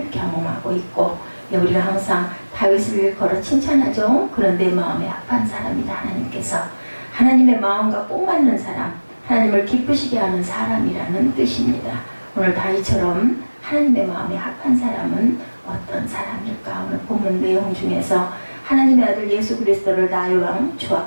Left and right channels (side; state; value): both; inverted; correlation -1.00